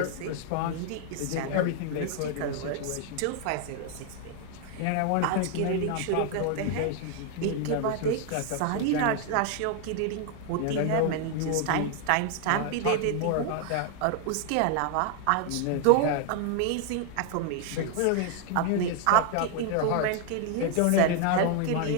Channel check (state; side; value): different; both; correlation 0.00